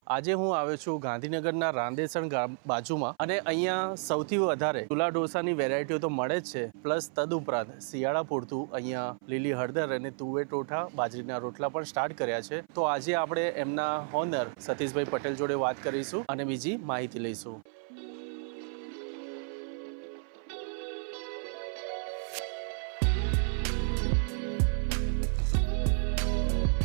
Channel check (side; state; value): left; silent; 56 dB below the other